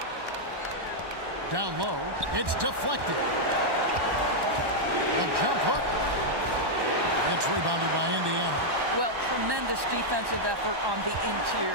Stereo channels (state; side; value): late; left; 1.1 ms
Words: Down low. It's deflected. A jump hook. It's rebounded by Indiana. Well, tremendous defensive effort on the